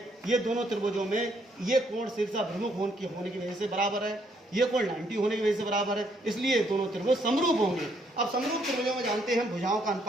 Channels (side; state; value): both; normal; correlation 0.70